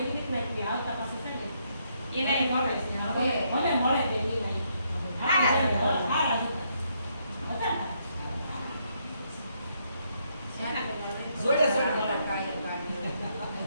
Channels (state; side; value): inverted; both; correlation -0.75